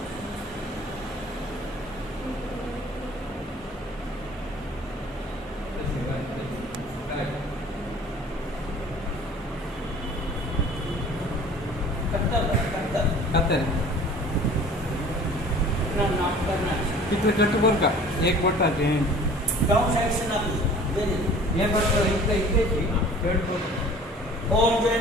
तिथे कट बर का एक बटा ते डाउन साइड से ना हे बटा इथे इथे कट ओम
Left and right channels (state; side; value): normal; both; correlation 0.47